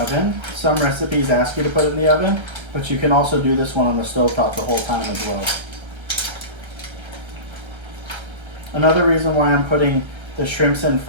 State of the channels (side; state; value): left; late; 1.3 ms